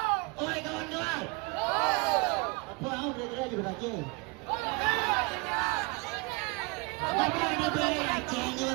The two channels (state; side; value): quieter; left; 28.0 dB